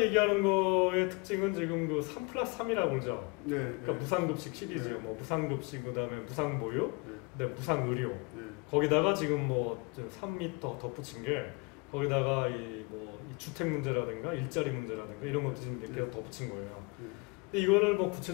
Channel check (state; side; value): quieter; right; 28.0 dB